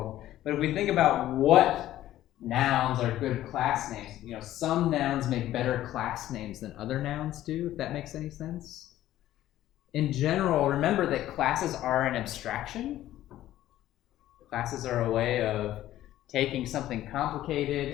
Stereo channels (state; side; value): quieter; right; 13.7 dB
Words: But if we think about what nouns are good class names, some nouns make better class names than other nouns do, if that makes any sense. In general, remember that classes are an abstraction. Classes are a way of taking something